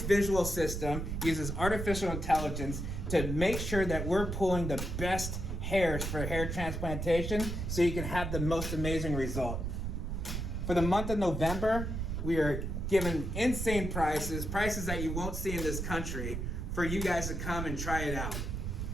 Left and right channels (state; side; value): noise; right; rumble, 3 dB below the sound